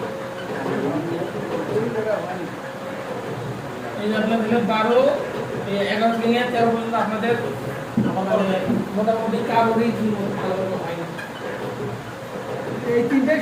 এই যে আপনারা দিলেন 12 এই 11 থেকে নিয়ে 13 পর্যন্ত আপনাদের মোটামুটি কারোরই ভালো হয় না। এই তিনটাই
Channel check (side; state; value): both; identical; correlation 1.00